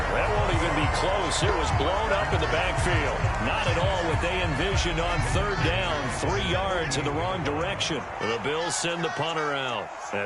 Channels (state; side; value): identical; both; correlation 1.00